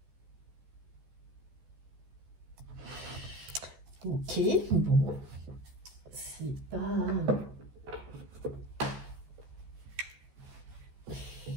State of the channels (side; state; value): left; late; 14 ms